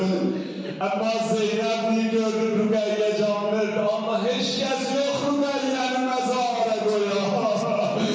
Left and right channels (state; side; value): identical; both; correlation 1.00